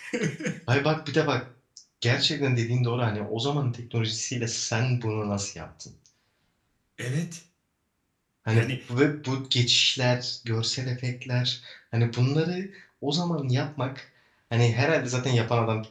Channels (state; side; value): identical; both; correlation 1.00